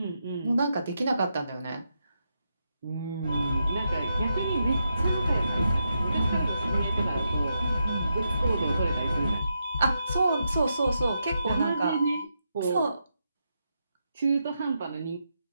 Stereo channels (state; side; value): inverted; both; correlation -0.83